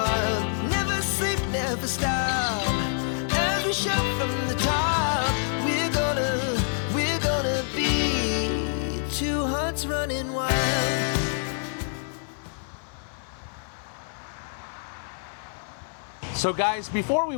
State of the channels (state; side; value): silent; right; 59 dB below the other